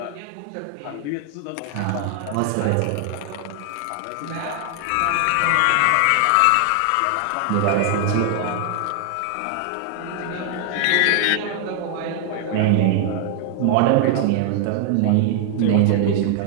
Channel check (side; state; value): both; different; correlation 0.00